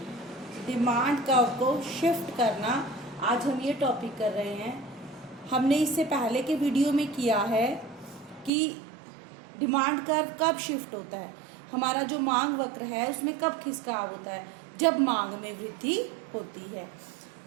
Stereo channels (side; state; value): left; drops out; at 8.5 s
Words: डिमांड कर्व को शिफ्ट करना। आज हम ये टॉपिक कर रहे हैं। हमने इससे पहले के वीडियो में किया है कि डिमांड कर्व कब शिफ्ट होता है, हमारा जो मांग वक्र है उसमें कब खिसकाव होता है, जब मांग में वृद्धि होती है।